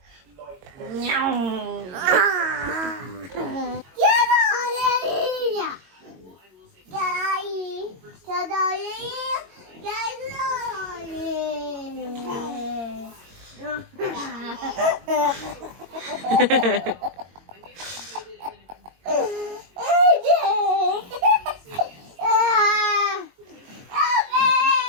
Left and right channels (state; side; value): late; left; 22 ms